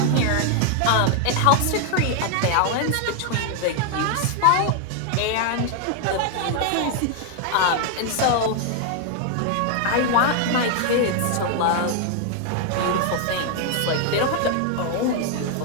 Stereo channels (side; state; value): both; different; correlation 0.00